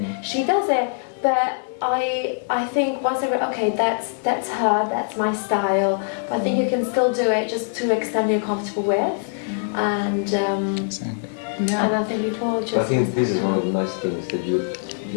she does it, but I think once I read, okay, that's her, that's my style, but I think you can still do it just to extent you're comfortable with, and Exactly. and I think people just. I think this is one of the nice things that you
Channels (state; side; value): silent; right; digital silence